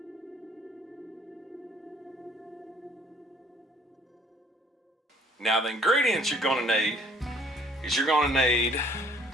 Now the ingredients you're going to need is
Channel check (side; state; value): both; normal; correlation 0.59